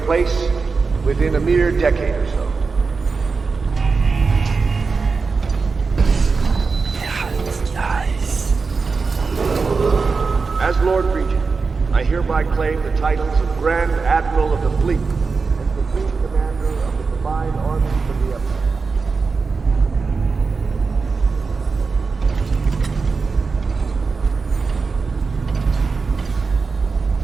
place within a mere decade or so. As Lord Regent, I hereby claim the titles of Grand Admiral of the Fleet and Supreme Commander of the combined armies of the Empire.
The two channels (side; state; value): left; quieter; 4.6 dB